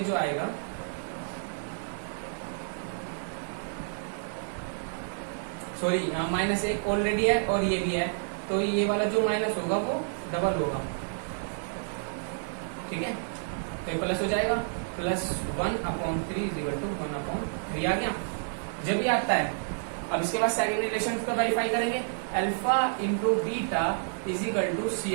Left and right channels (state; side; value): silent; left; digital silence